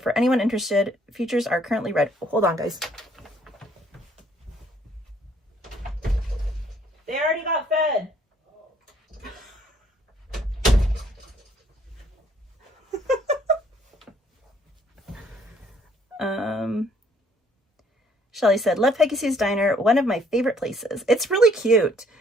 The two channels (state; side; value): normal; both; correlation 0.64